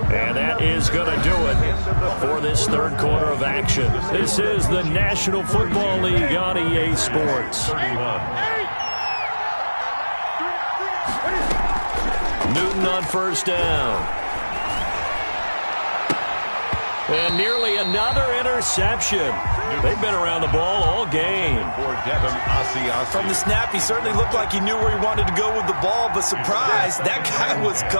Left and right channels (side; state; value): both; inverted; correlation -1.00